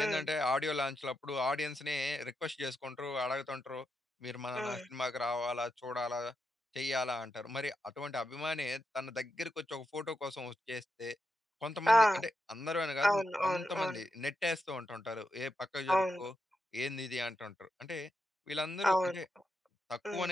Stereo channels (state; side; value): normal; both; correlation 0.86